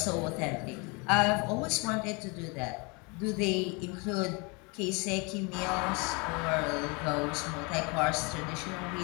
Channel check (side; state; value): right; quieter; 30.2 dB